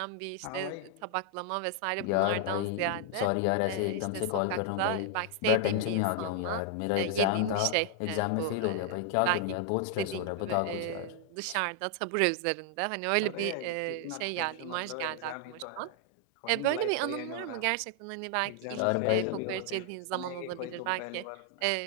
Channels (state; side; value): different; both; correlation 0.00